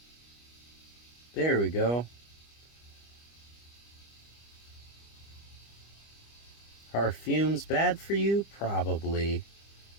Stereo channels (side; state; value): right; late; 25 ms